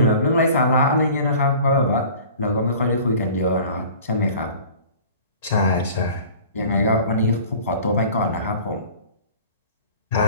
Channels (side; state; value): both; inverted; correlation -0.44